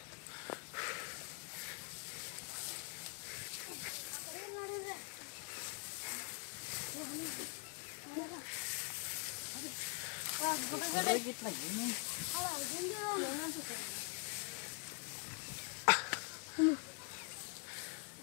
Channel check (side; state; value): right; quieter; 37.5 dB